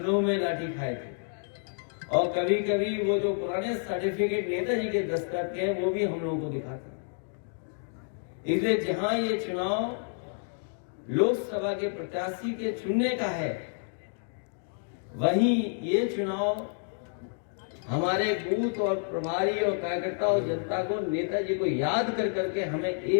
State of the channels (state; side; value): silent; right; 58 dB below the other